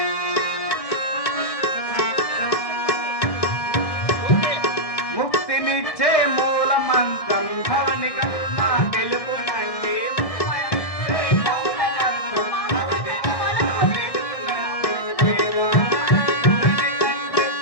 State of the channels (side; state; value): right; late; 1.6 ms